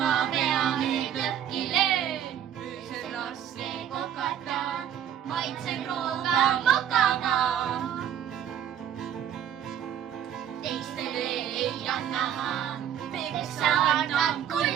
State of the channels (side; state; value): left; quieter; 9.8 dB